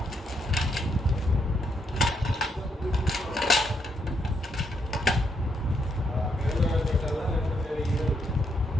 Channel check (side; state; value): both; normal; correlation 0.76